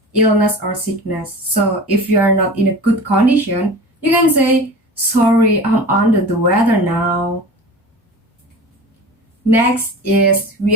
illness or sickness. So if you are not in a good condition, you can say, sorry, I'm under the weather now. Next is we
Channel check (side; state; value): both; normal; correlation 0.35